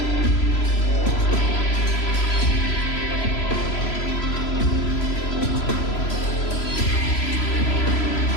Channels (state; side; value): late; right; 3.0 ms